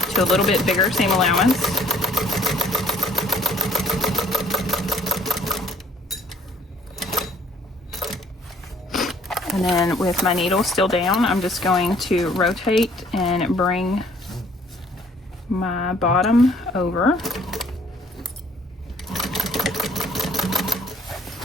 to a little bit bigger seam allowance. And then with my needle still down, I'm just going to rotate and bring my bottom over.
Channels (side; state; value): both; normal; correlation 0.59